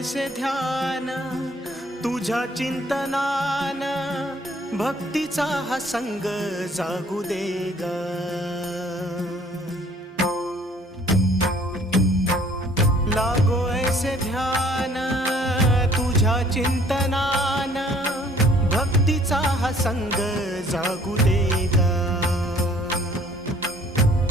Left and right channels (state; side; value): normal; both; correlation 0.57